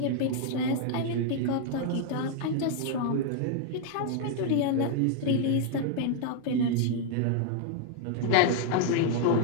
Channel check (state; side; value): different; both; correlation 0.00